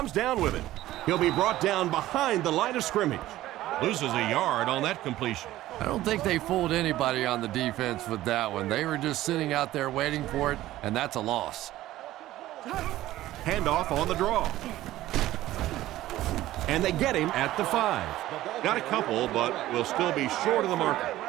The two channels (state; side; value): quieter; left; 15.2 dB